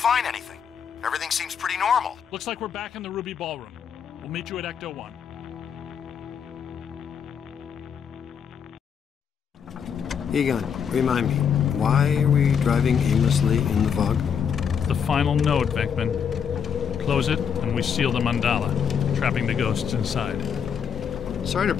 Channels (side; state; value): right; quieter; 7.2 dB